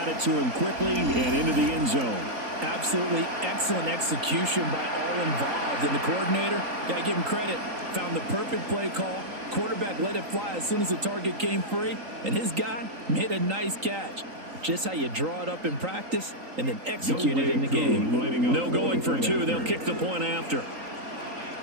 it to him quickly and into the end zone. Absolutely excellent execution by all involved. And the coordinator, got to give him credit, found the perfect play call. Quarterback let it fly as soon as the target came free. And his guy made a nice catch. Just how you draw it up in practice and then execute it in the game. No going for 2. They'll kick the point after.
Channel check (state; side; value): late; left; 3.7 ms